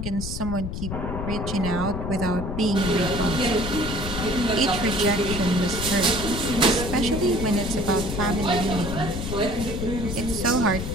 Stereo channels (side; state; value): left; noise; rumble, 5 dB below the sound